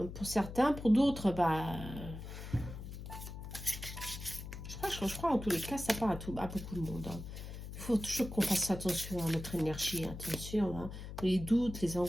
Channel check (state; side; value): noise; left; hum, 10 dB below the sound